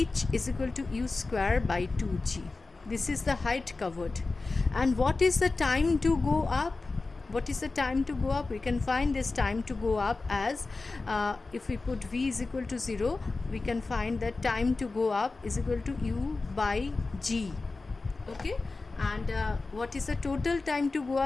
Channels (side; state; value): right; quieter; 3.6 dB